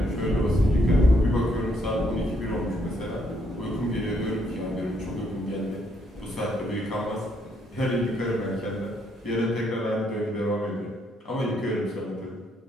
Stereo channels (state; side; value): normal; both; correlation 0.72